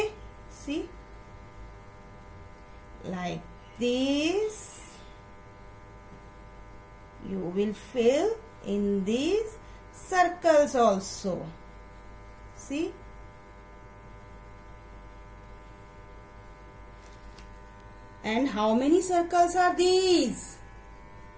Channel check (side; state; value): both; identical; correlation 1.00